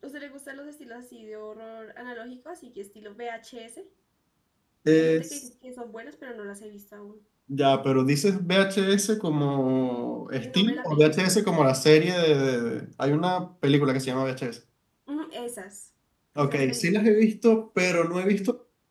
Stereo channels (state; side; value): identical; both; correlation 1.00